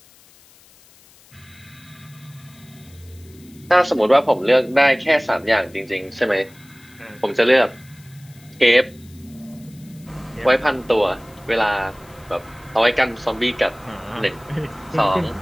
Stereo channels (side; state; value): left; noise; hiss, 27 dB below the sound